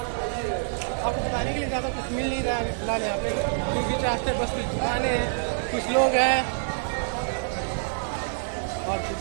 आपको बताने के लिए ज़्यादा कुछ मिल नहीं रहा है फिलहाल यहाँ पे, क्योंकि रास्ते बस कुछ दुकानें हैं, कुछ लोग हैं और कुछ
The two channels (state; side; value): silent; left; digital silence